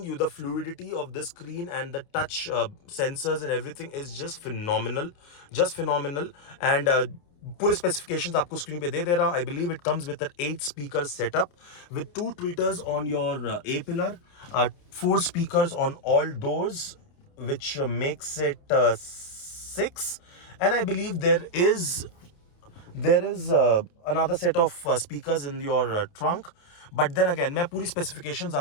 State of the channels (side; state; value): right; late; 29 ms